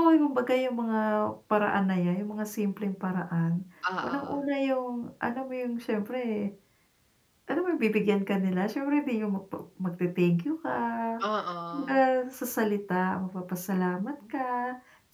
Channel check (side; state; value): both; identical; correlation 1.00